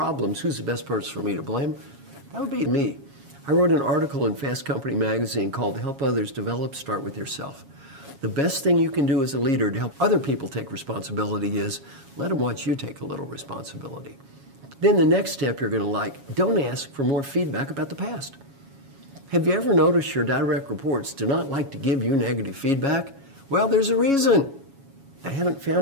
who's the best person for me to blame? That would be me. I wrote an article in Fast Company magazine called Help Others Develop, Start With Yourself. The best thing you can do as a leader to help other people take responsibility is let them watch you take a little responsibility. Then the next step you're going to like, don't ask for more feedback about the past. Have you ever noticed your direct reports do not like to give you negative feedback? Well, there's a reason. They haven't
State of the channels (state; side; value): late; left; 7.2 ms